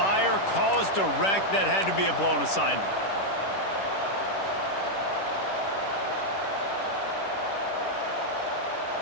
caused a wreck. That had to be a blown assignment.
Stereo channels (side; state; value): right; late; 10 ms